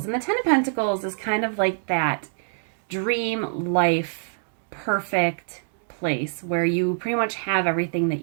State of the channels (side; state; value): left; silent; digital silence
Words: And the Ten of Pentacles is kind of like that dream life, perfect place where you pretty much have everything